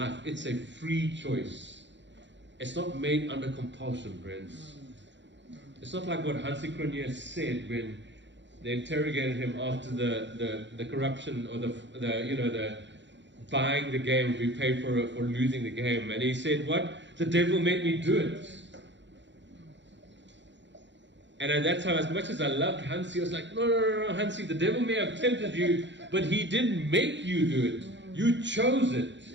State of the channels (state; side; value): late; left; 0.53 ms